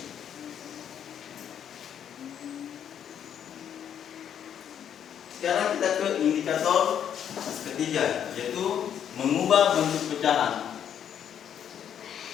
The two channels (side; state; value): right; quieter; 9.1 dB